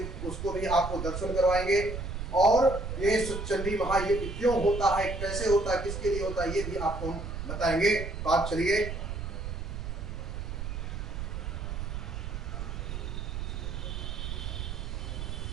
उसको भी आपको दर्शन करवाएंगे और ये सचंडी महायज्ञ क्यों होता है, कैसे होता है, किसके लिए होता है, ये भी आपको हम बताएंगे। तो आप चलिए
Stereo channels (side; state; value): right; noise; rumble, 5 dB below the sound